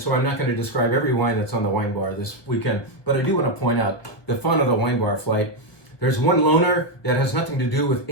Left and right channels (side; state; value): right; late; 1.2 ms